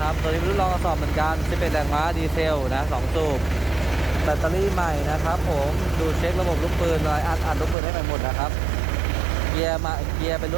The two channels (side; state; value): left; drops out; at 7.8 s